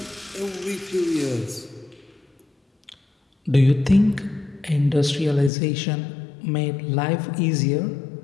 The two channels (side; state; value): right; drops out; at 5.5 s